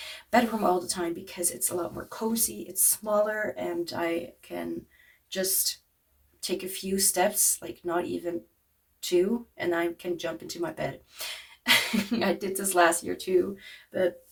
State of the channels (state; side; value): identical; both; correlation 1.00